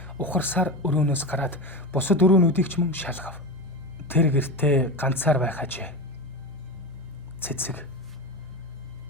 ухарсаар өрөөнөөс гараад бусад өрөөнүүдийг ч мөн шалгав. Тэр гэртээ ганцаар байх ажээ. Цэцэг.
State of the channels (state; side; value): normal; both; correlation 0.21